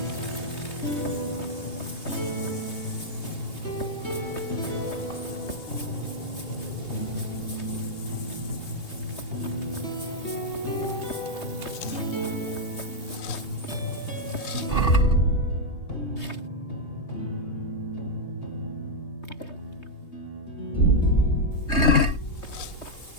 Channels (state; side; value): late; right; 3.2 ms